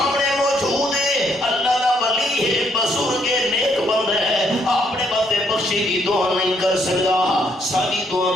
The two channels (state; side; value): normal; both; correlation 0.71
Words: موجود ہے, اللہ دا ولی ہے, بزرگ ہے, نیک بندہ ہے, اپنے واسطے بخشی دی دعا نہیں کر سکتا, ساری دعا